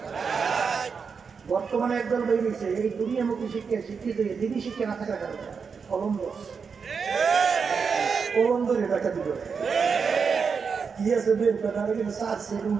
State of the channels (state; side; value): quieter; left; 5.7 dB